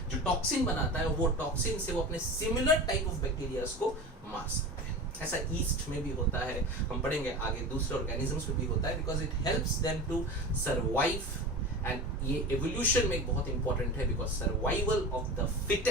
जो टॉक्सिन बनाता है. वो टॉक्सिन से वो अपने सिमिलर टाइप ऑफ बैक्टीरियाज को मार सकते हैं. ऐसा ईस्ट में भी होता है, हम पढ़ेंगे आगे, दूसरे ऑर्गेनिजम्स में भी होता है, because it helps them to survive. And ये एवोल्यूशन में बहुत इंपॉर्टेंट है, because survival of the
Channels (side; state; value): both; normal; correlation 0.31